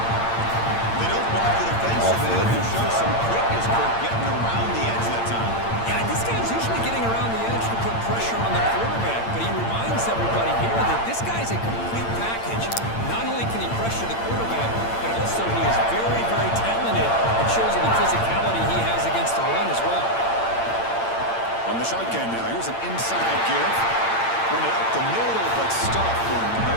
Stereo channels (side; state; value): right; late; 8.8 ms